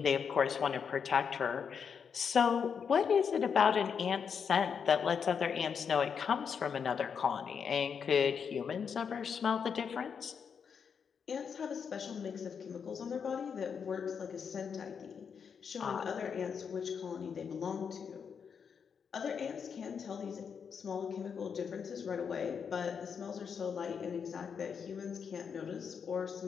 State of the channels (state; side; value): quieter; right; 6.7 dB